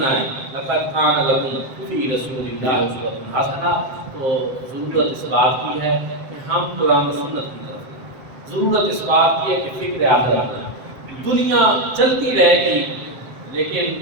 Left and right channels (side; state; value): left; late; 7.7 ms